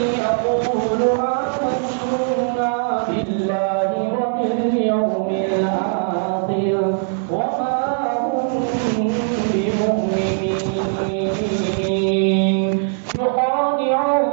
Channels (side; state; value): left; silent; 65 dB below the other